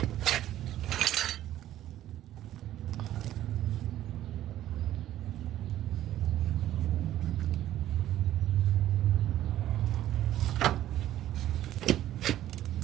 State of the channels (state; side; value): quieter; left; 13.0 dB